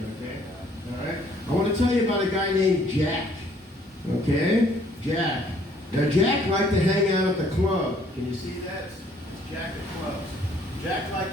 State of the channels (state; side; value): normal; both; correlation 0.62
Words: okay? All right? I want to tell you about a guy named Jack. Okay? Jack. Now, Jack liked to hang out at the club. Can you see that? It's Jack at clubs. Jack liked